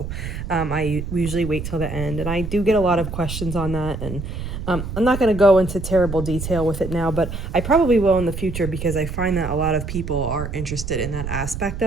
I usually wait till the end, and I do get a lot of questions on that, and I'm not going to go into terrible detail with it now, but I probably will in the future because I find that a lot of people are interested in that aspect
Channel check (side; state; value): right; noise; rumble, 7 dB below the sound